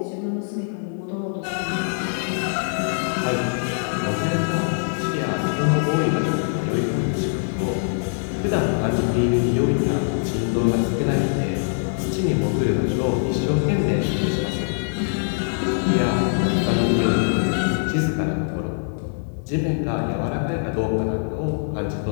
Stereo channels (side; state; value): right; silent; 63 dB below the other